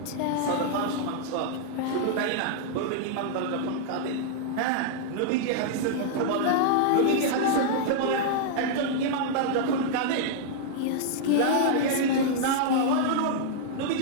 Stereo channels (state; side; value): different; both; correlation -0.01